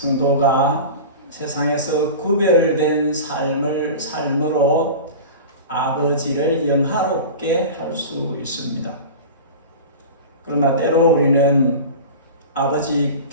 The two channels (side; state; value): both; inverted; correlation -0.32